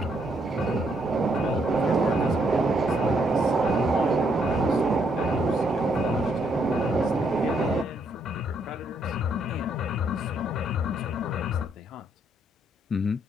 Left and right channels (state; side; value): normal; both; correlation 0.73